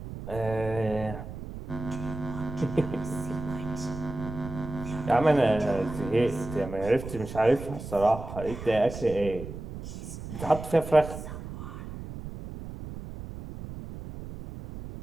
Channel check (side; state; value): right; noise; rumble, 10 dB below the sound